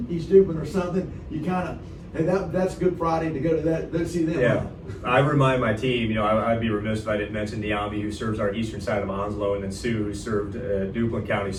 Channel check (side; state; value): both; identical; correlation 1.00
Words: East Dupin or something. You kind of, and that's Good Friday to go to that, to see them. Yeah. I remind my team, you know, I'd be remiss if I didn't mention Niambi, who serves our eastern side of Onslow, and then Sue, who served Duplin County